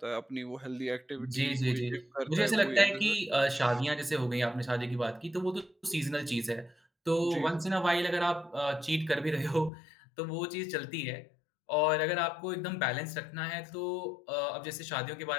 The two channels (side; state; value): right; drops out; at 9.7 s